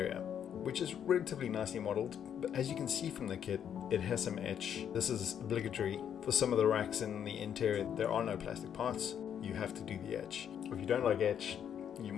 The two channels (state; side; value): quieter; right; 8.8 dB